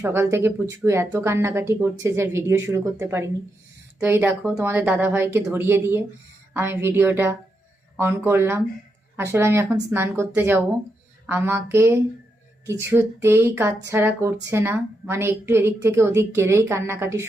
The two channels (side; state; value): both; normal; correlation 0.84